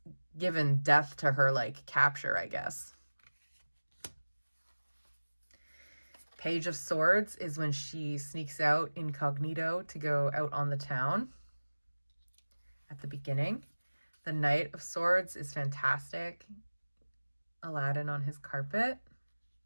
given death to her like capture, I guess. Page of Swords is when she sneaks out incognito to go out on the town at the beginning. The Knight of Swords is fantastic. Aladdin on his carpet.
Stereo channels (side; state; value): both; inverted; correlation -1.00